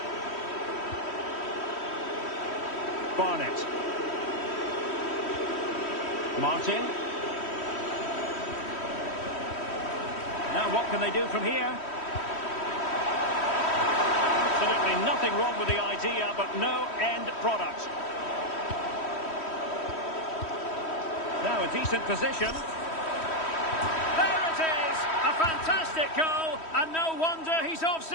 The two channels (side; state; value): right; late; 3.1 ms